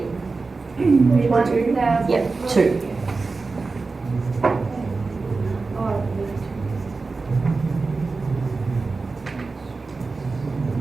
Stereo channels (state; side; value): quieter; left; 4.0 dB